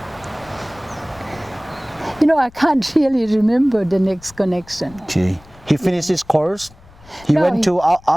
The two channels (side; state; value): left; noise; rumble, 24 dB below the sound